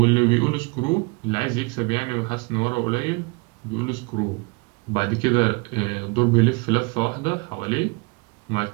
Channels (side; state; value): left; quieter; 29.3 dB